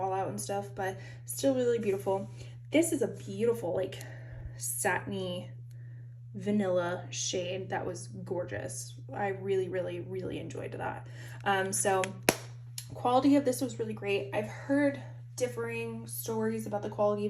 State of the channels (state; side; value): identical; both; correlation 1.00